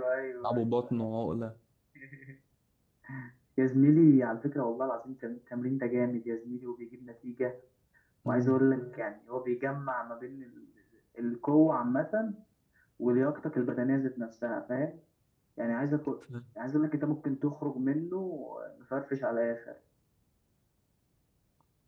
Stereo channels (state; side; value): identical; both; correlation 1.00